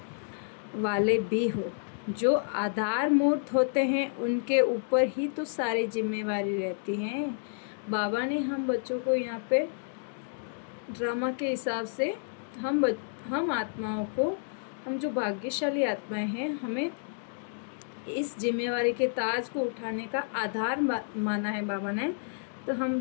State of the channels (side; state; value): right; silent; digital silence